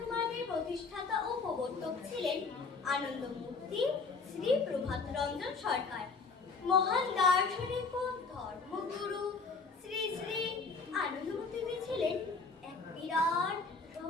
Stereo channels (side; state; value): right; quieter; 4.4 dB